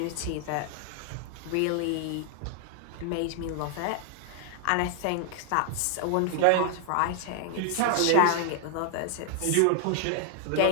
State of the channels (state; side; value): different; both; correlation 0.00